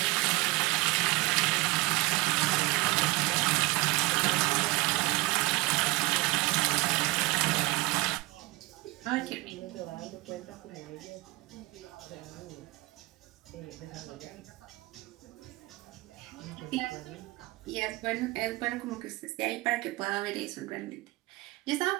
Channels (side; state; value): left; quieter; 21.6 dB